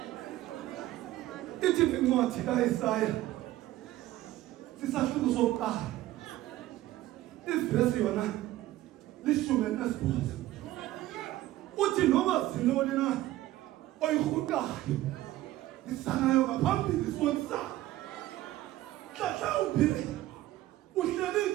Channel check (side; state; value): left; quieter; 15.4 dB